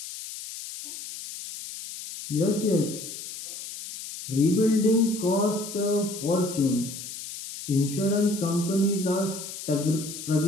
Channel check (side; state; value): left; noise; hiss, 10 dB below the sound